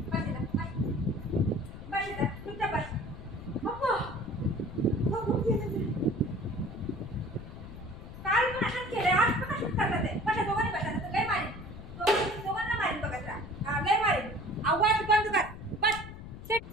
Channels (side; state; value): left; noise; rumble, 13 dB below the sound